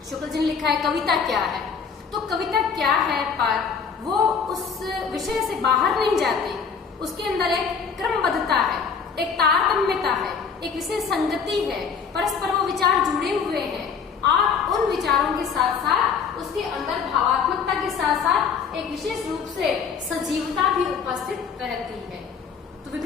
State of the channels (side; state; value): right; quieter; 6.2 dB